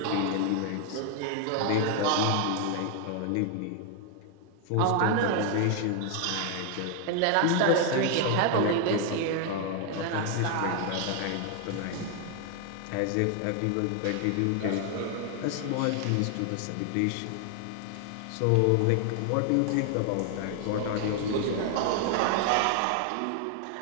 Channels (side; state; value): both; different; correlation 0.00